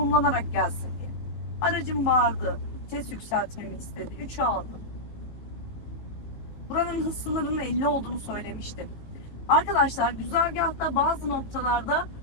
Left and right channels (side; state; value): right; late; 19 ms